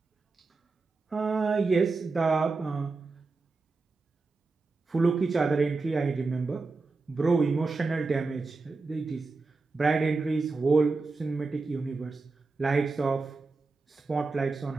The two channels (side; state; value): left; quieter; 3.9 dB